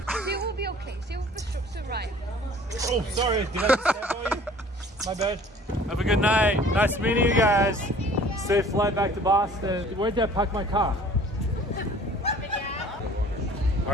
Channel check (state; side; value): normal; both; correlation 0.50